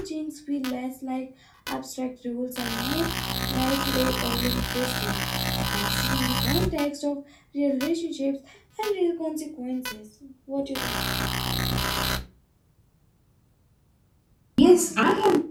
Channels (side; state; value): both; identical; correlation 1.00